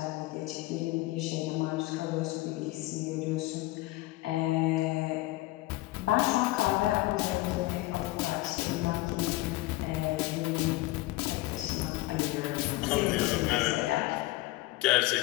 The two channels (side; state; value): right; quieter; 19.3 dB